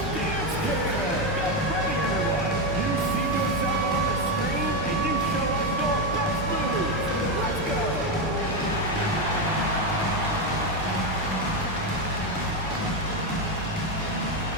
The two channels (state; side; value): normal; both; correlation 0.09